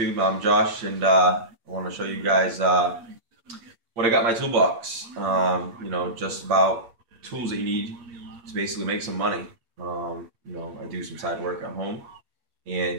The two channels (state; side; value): late; left; 8.7 ms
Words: I'm Josh, and I want to show you guys what I got in my toolbox. Just about tools that you need to basically make some money. I do some side work at home,